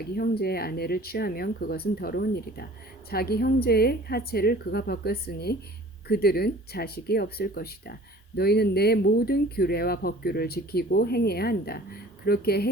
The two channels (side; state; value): both; normal; correlation 0.47